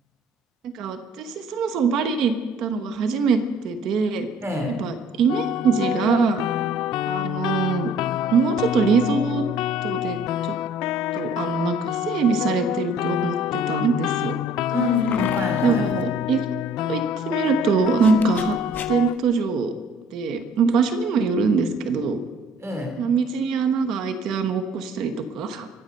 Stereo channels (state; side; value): normal; both; correlation 0.55